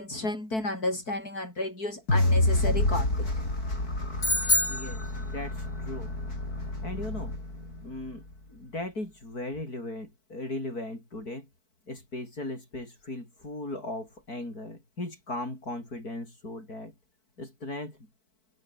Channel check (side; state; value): right; late; 4.6 ms